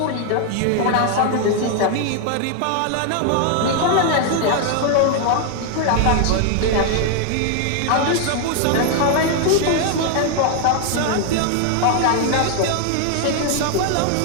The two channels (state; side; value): different; both; correlation 0.00